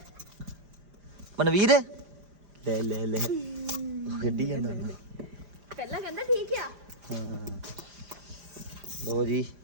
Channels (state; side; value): late; left; 5.0 ms